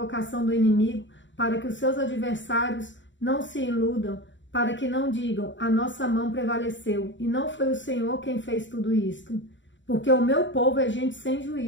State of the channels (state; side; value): late; right; 0.54 ms